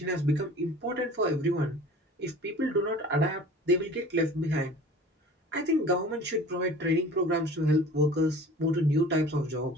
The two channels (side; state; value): both; normal; correlation 0.43